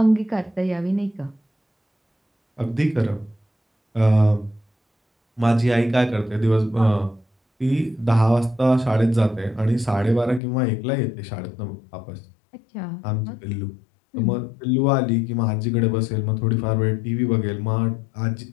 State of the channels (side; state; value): right; drops out; at 10.4 s